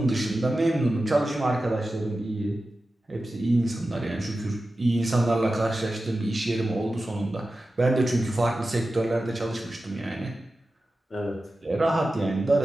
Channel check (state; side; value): normal; both; correlation 0.93